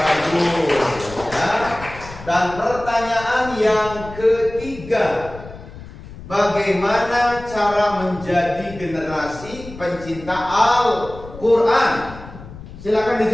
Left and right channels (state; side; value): noise; left; rumble, 15 dB below the sound